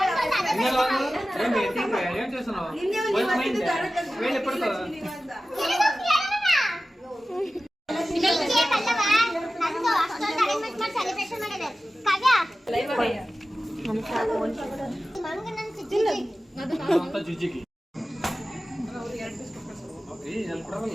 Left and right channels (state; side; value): normal; both; correlation 0.95